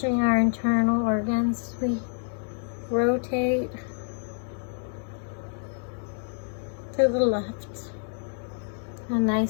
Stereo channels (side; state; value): right; silent; 60 dB below the other